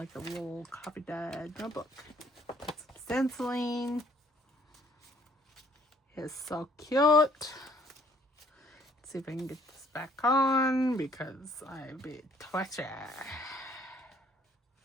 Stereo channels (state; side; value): normal; both; correlation 0.62